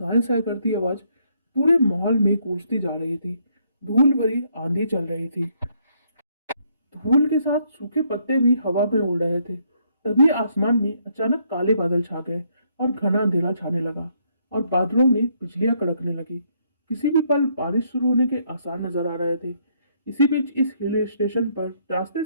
साय करती आवाज पूरे माहौल में गूंजती जा रही थी। धूल भरी आंधी चल रही थी। धूल के साथ सूखे पत्ते भी हवा में उड़ रहे थे। तभी आसमान में अचानक काले बादल छा गए और घना अंधेरा छाने लगा और बादलों में बिजलियां कड़कने लगी। किसी भी पल बारिश शुरू होने के आसार नजर आ रहे थे। इसी बीच इस हिल स्टेशन पर रास्ते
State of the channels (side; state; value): both; inverted; correlation -0.71